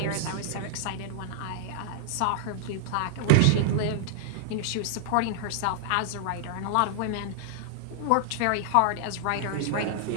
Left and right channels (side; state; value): both; different; correlation -0.01